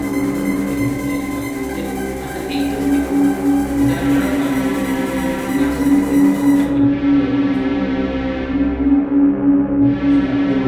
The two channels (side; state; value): both; identical; correlation 1.00